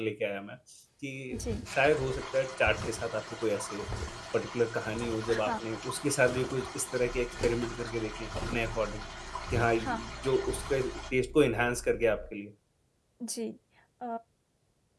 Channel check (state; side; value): identical; both; correlation 1.00